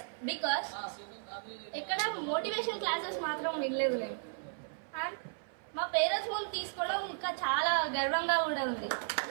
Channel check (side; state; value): left; silent; 55 dB below the other